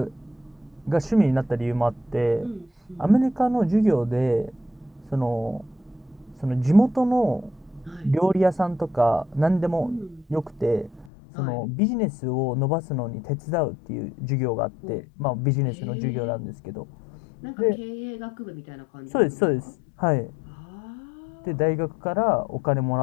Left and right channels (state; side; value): drops out; right; at 11.1 s